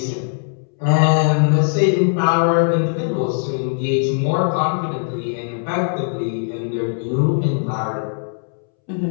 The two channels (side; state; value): right; silent; 66 dB below the other